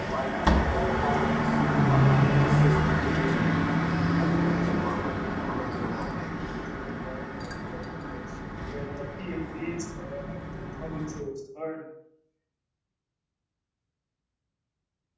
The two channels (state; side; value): identical; both; correlation 1.00